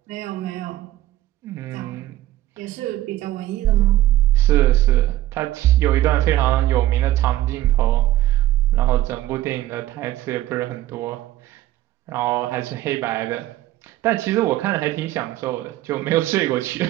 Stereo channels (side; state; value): left; quieter; 14.9 dB